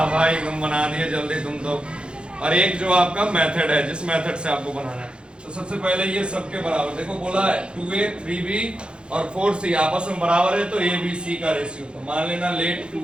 भाई तुम बना दिए जल्दी तुम तो। और एक जो आपका मेथड है, जिस मेथड से आपको बनाना है। तो सबसे पहले ये सबके बराबर, देखो बोला है 2a 3b और 4c आपस में बराबर है, तो a b c का रेशियो। तो मान लेना let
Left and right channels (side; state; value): left; late; 0.054 ms